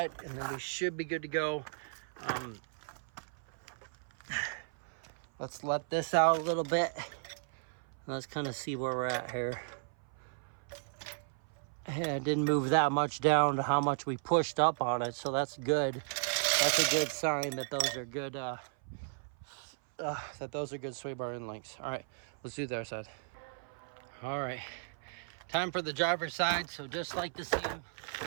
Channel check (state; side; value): silent; left; 54 dB below the other